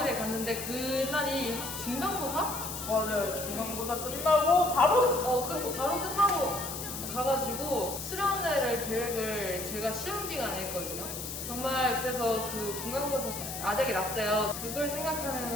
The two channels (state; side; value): noise; left; hiss, 7 dB below the sound